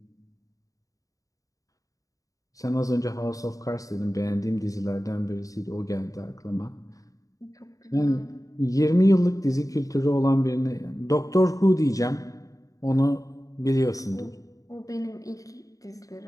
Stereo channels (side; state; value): right; late; 0.16 ms